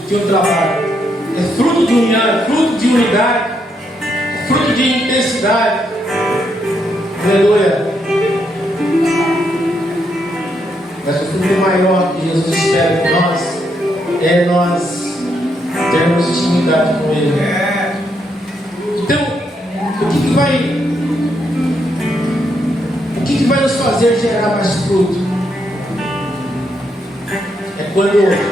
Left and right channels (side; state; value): both; normal; correlation 0.78